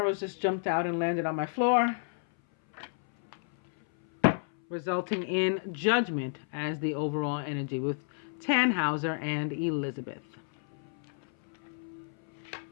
just jumped out and landed on my floor, resulting in Judgment as the overall energy with Tannhauser and Elizabeth.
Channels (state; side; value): silent; right; 57 dB below the other